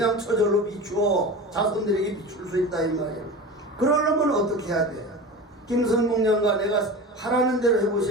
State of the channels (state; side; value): normal; both; correlation 0.31